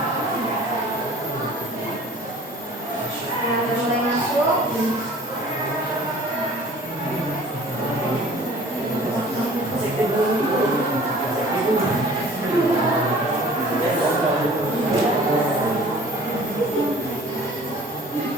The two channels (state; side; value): normal; both; correlation 0.48